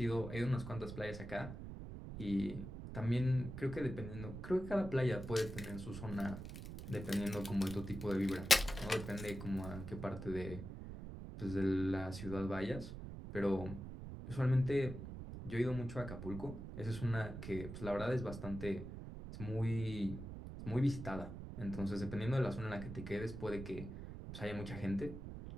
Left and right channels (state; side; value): noise; right; rumble, 9 dB below the sound